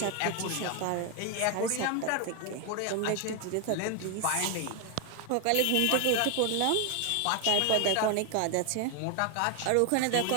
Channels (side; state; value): both; different; correlation 0.01